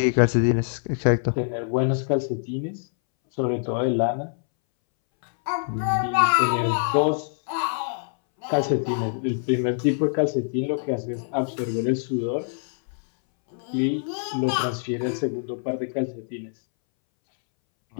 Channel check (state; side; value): silent; right; 61 dB below the other